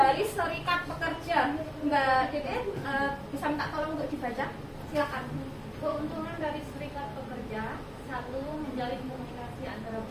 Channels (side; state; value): both; identical; correlation 1.00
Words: serikat pekerja, Mbak Dede bisa minta tolong untuk dibaca? Silakan. Keuntungan dari serikat pekerja: 1. Menjalin komunikasi antara